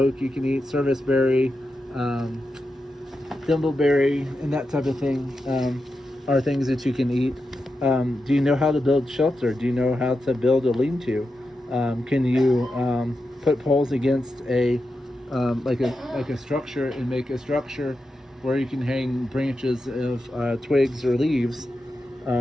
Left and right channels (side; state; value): both; normal; correlation 0.89